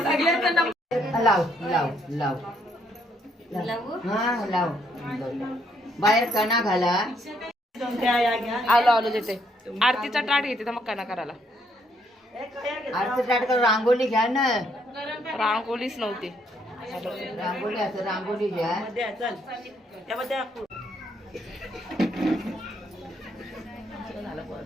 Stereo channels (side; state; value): both; normal; correlation 0.71